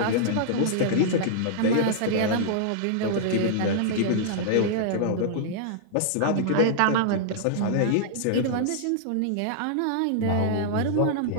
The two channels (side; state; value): both; different; correlation -0.01